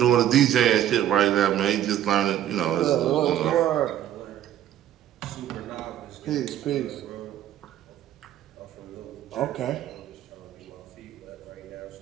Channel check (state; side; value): quieter; left; 11.5 dB